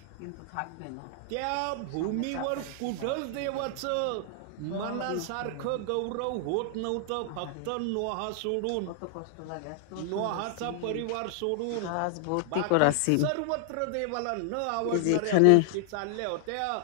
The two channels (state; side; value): different; both; correlation -0.01